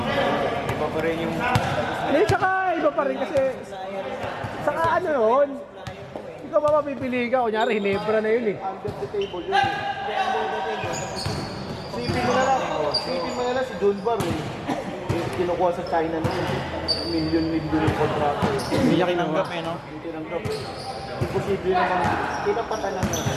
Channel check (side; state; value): both; identical; correlation 1.00